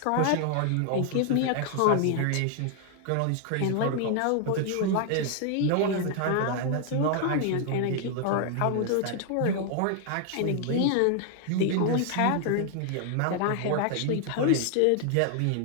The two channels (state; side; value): different; both; correlation 0.00